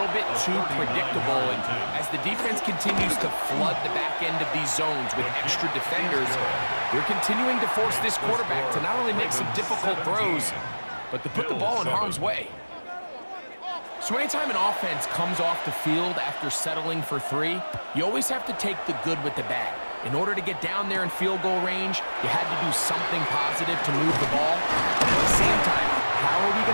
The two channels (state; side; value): inverted; both; correlation -1.00